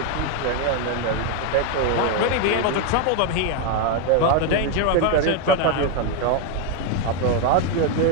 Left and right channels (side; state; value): both; different; correlation 0.01